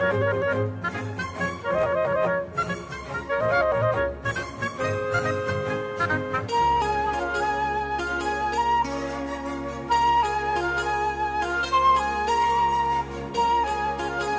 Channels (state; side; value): identical; both; correlation 1.00